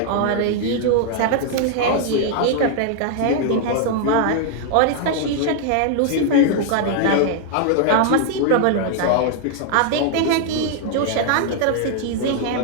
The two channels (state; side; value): different; both; correlation 0.00